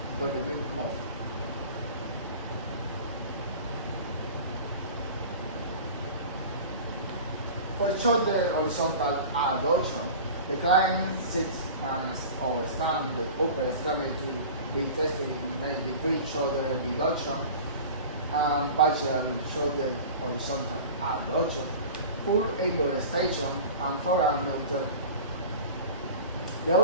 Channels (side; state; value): both; inverted; correlation -0.37